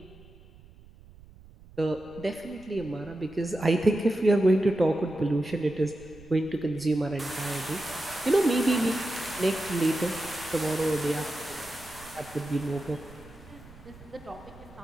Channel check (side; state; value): right; noise; rumble, 22 dB below the sound